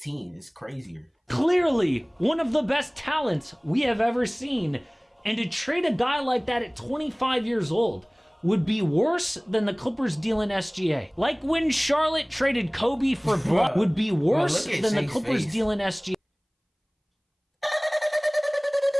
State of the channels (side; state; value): both; identical; correlation 1.00